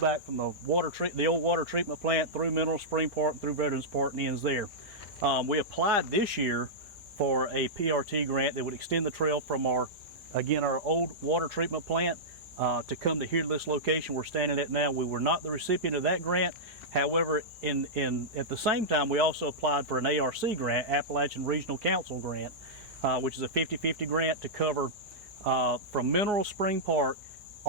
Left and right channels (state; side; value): normal; both; correlation -0.11